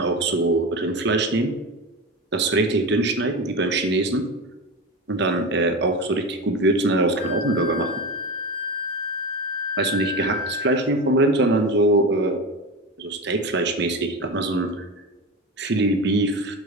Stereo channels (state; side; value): normal; both; correlation 0.23